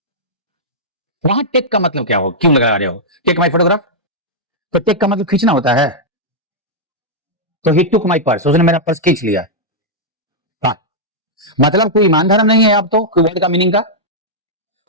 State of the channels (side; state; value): both; normal; correlation -0.07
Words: वहां टेक का मतलब क्या हो, क्यों लगा रहे हो टेक माई फोटोग्राफ? तो टेक का मतलब खींचना होता है, तो ही टुक माई पर्स, उसने मेरा पर्स खींच लिया। हाँ, मतलब कोई ईमान धर्म नहीं है आप तो, कोई वर्ड का मीनिंग का